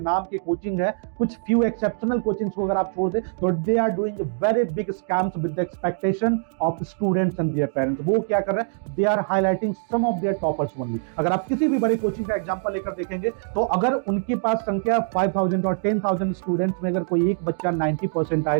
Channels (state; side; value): silent; left; digital silence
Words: के कोचिंग है, कुछ फ्यू एक्सेप्शनल कोचिंग्स को अगर आप छोड़ दें, तो they are doing very big scams with the expectation of students and their parents. वो क्या कर रहे हैं? They are highlighting some of their toppers only. अगर आप किसी भी बड़े कोचिंग का एग्जांपल लेकर देखेंगे, तो अगर उनके पास संख्या 5000 और 10,000 स्टूडेंट्स में अगर कोई एक बच्चा 90